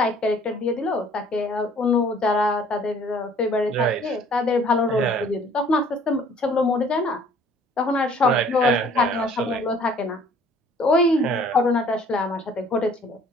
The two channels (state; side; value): normal; both; correlation 0.55